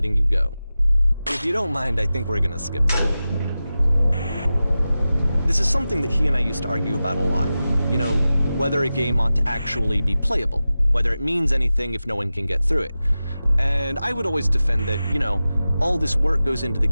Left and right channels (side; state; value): both; inverted; correlation -0.94